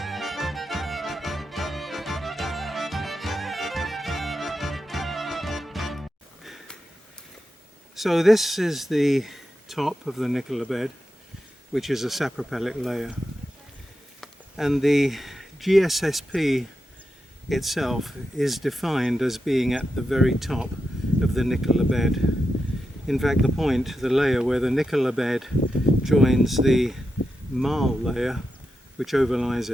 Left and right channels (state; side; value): normal; both; correlation 0.88